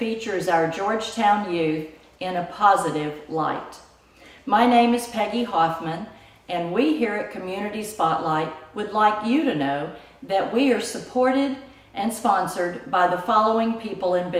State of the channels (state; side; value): identical; both; correlation 1.00